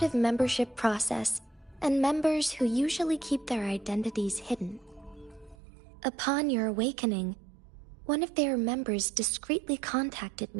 membership process and members who usually keep their identities hidden. Upon your awakening, one of their members discreetly contacted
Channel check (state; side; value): drops out; left; at 5.6 s